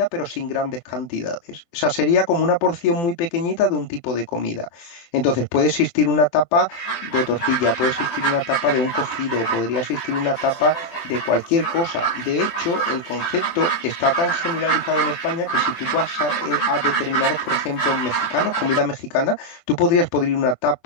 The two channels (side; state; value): right; late; 24 ms